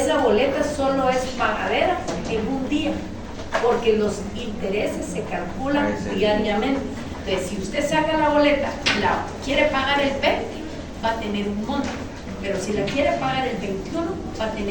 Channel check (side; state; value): both; identical; correlation 1.00